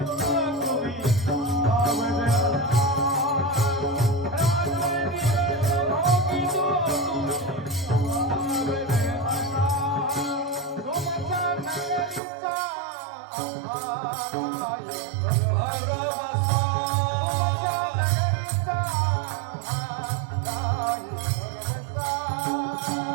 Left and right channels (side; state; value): left; drops out; at 12.2 s